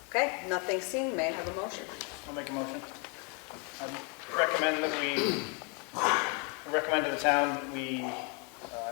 Okay, nothing seen. May I have a motion? I'll make a motion. I recommend to the town that we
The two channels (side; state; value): right; quieter; 34.8 dB